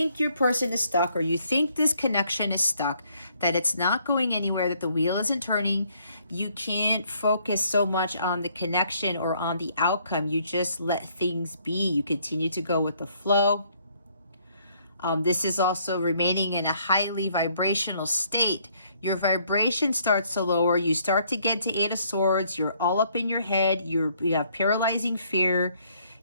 your person is stuck, or you think this connection is stuck, that it's not going anywhere, that the wheel isn't turning. You can't focus so much on the connection or on the outcome. You just let things be. You continue to go with the flow. This is also remaining in a highly vibrational state. Your vibration starts to lower. You start to get to Eight of Swords. You're all up in your head. You have paralyzing fear.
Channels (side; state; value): both; inverted; correlation -0.67